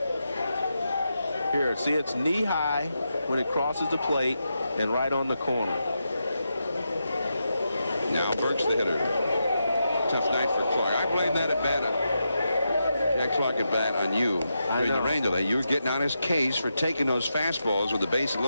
Here, see, it's knee-high when it crosses the plate and right on the corner. Now Burks the hitter. Tough night for Clark. I blame that at bat. Jack Clark at bat on you during the rain delay. You were getting on his case for taking those fastballs with the base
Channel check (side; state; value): both; inverted; correlation -0.86